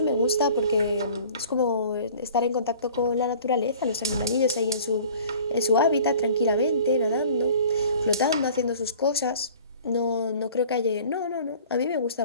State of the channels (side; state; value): both; inverted; correlation -0.47